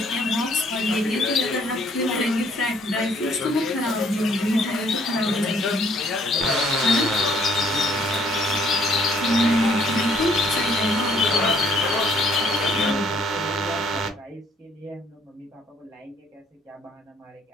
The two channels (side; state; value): both; normal; correlation 0.63